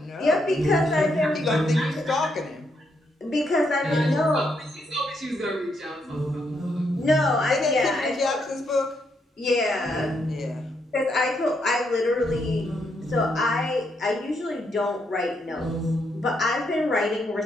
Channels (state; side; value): normal; both; correlation 0.77